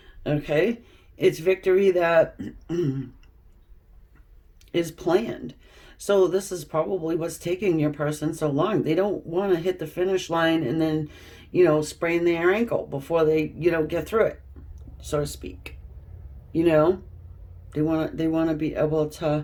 Okay? It's victory that is planned. So this is probably what's taking your person so long. They don't want to hit the finish line and then, sprain their ankle before they, get through it, so to speak. You know, they want to be able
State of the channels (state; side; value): identical; both; correlation 1.00